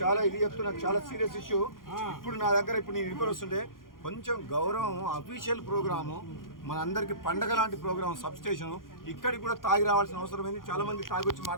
ఇది చెప్తున్నా, చాలా సీరియస్ ఇష్యూ. ఇప్పుడు నా దగ్గర ఇప్పుడు నేను ఇంటికి వస్తుంటే కొంచెం గౌరవం, అఫీషియల్ ప్రోగ్రాము, మన అందరికి పండగ లాంటి ప్రోగ్రామ్, సబ్ స్టేషన్, ఇక్కడికి కూడా తాగి రావాల్సిన అవసరం ఏంది? చాలా మంది తాగి వచ్చి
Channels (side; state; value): right; late; 0.90 ms